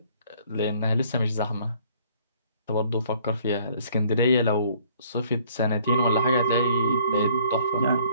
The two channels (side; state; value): both; inverted; correlation -0.59